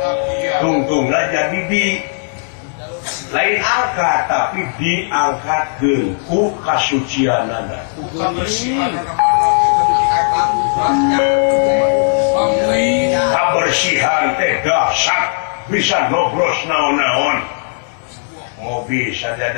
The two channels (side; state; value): right; silent; digital silence